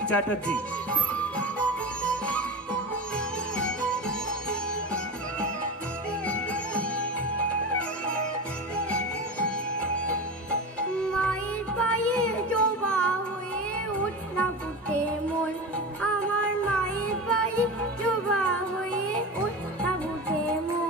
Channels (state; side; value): normal; both; correlation 0.26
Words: চ্যাটার্জি। মায়ের পায়ে জবা হয়ে উঠনা ফুটে মন, আমার মায়ের পায়ে জবা হয়ে উঠনা ফুটে